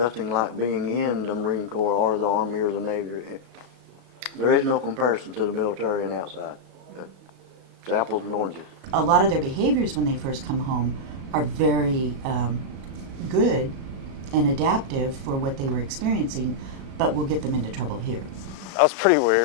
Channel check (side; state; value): left; late; 37 ms